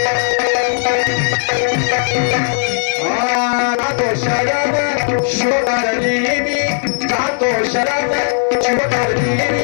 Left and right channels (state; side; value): silent; right; 55 dB below the other